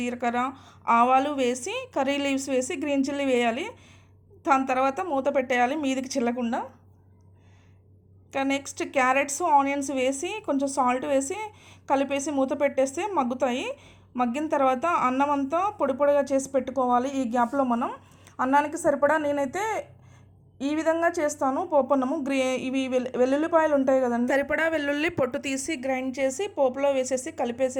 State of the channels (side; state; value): both; identical; correlation 1.00